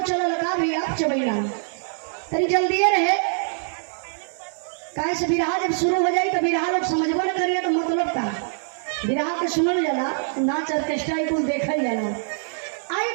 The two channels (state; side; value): silent; left; 58 dB below the other